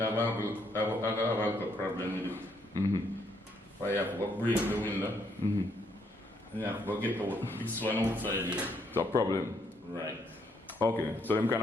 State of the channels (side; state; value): both; normal; correlation 0.72